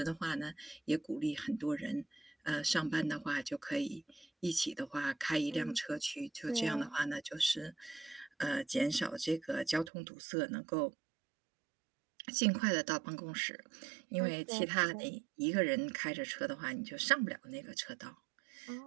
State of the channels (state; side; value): drops out; left; at 9.9 s